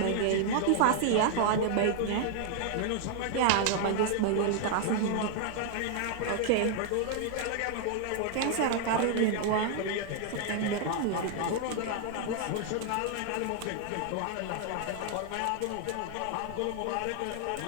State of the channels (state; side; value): different; both; correlation 0.00